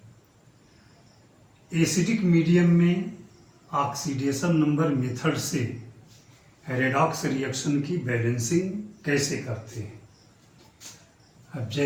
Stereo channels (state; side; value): identical; both; correlation 1.00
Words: Acidic medium में ऑक्सीडेशन नंबर मेथड से रेडॉक्स रिएक्शन की बैलेंसिंग कैसे करते हैं। अब